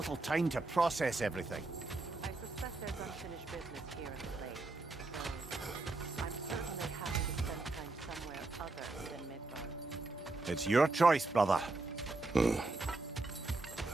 time to process everything. I suspect there's unfinished business here in the lake. So I'm certainly happy to spend time somewhere other than Midgard. It's your choice, brother.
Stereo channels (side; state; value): left; quieter; 3.2 dB